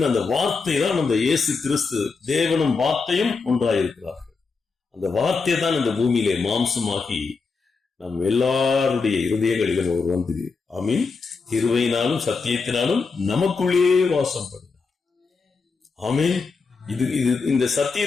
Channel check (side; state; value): right; quieter; 4.6 dB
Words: அந்த வார்த்தை தான் அந்த இயேசு கிறிஸ்து. தேவனும் வார்த்தையும் ஒன்றாயிருக்கிறார்கள். அந்த வார்த்தை தான் இந்த பூமியிலே மாம்சமாகி நம் எல்லாருடைய இருதயங்களிலும் அவர் வந்து, ஆமீன், கிருபையினாலும் சத்தியத்தினாலும் நமக்குள்ளே வாசம் பண்ணினார். ஆமீன். இந்த